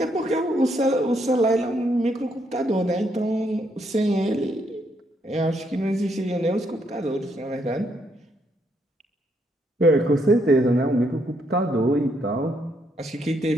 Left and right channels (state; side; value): normal; both; correlation 0.74